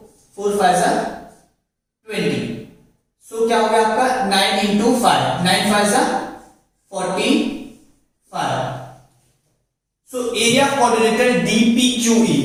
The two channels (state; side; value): identical; both; correlation 1.00